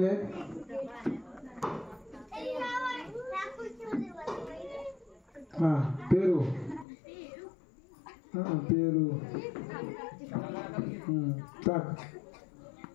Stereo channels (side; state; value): right; drops out; at 6.9 s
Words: आहेत. हा पेरू. हा पेरू. टाक.